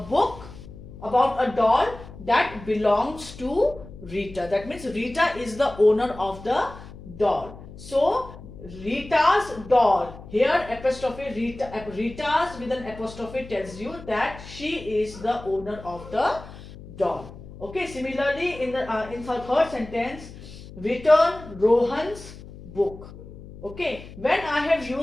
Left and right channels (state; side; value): noise; left; hum, 16 dB below the sound